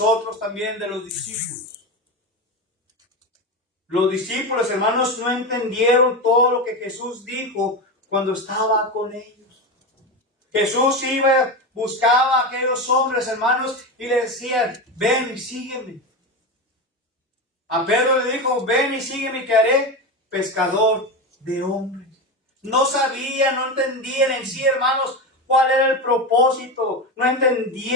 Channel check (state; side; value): normal; both; correlation 0.18